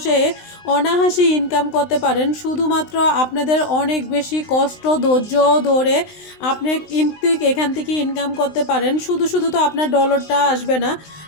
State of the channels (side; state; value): right; late; 19 ms